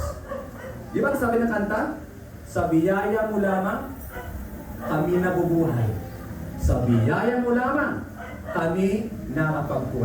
Di ba sabi ng kanta? Sa biyaya mo lamang, kami nabubuhay. Sa biyaya mo lamang, kami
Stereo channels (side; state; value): both; identical; correlation 1.00